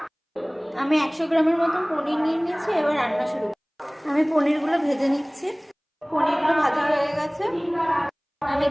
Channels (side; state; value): both; identical; correlation 1.00